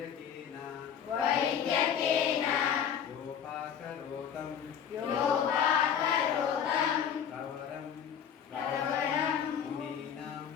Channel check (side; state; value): right; quieter; 8.2 dB